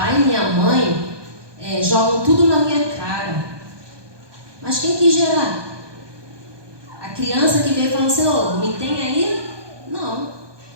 e minha mãe jogam tudo na minha cara. Mas quem quis gerar? A criança que veio falando assim, me tem aí? Não.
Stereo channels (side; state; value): left; late; 1.2 ms